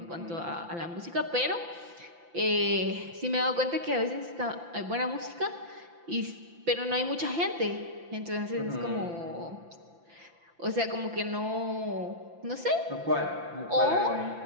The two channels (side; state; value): left; late; 5.9 ms